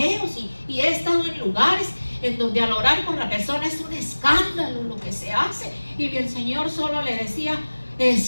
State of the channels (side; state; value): both; inverted; correlation -1.00